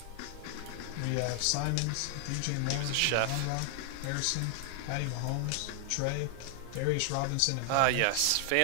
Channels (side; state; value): both; different; correlation 0.00